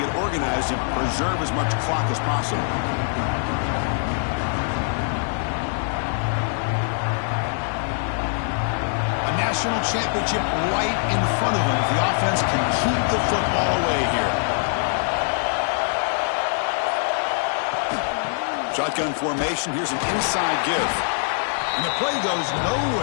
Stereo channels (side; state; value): right; silent; 63 dB below the other